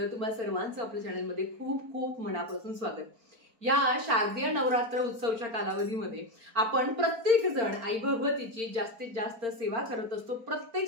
तुम्हा सर्वांचं आपल्या चॅनलमध्ये खूप खूप मनापासून स्वागत। या शारदीय नवरात्र उत्सवच्या कालावधीमध्ये आपण प्रत्येक जण आई भगवतीची जास्तीत जास्त सेवा करत असतो। प्रत्येक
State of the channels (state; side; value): late; left; 4.4 ms